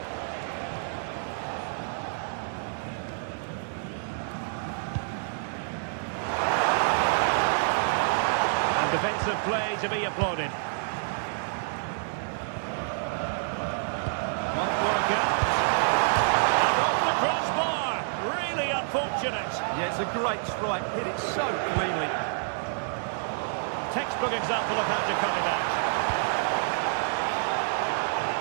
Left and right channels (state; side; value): silent; left; digital silence